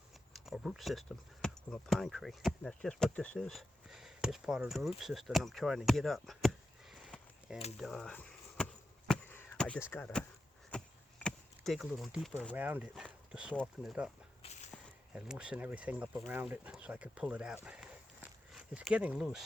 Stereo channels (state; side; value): normal; both; correlation 0.90